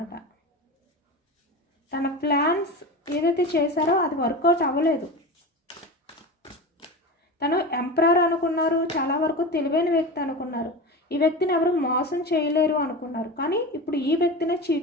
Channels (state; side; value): normal; both; correlation 0.27